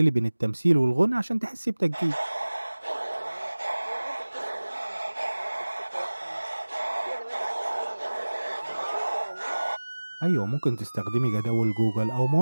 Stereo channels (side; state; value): both; inverted; correlation -1.00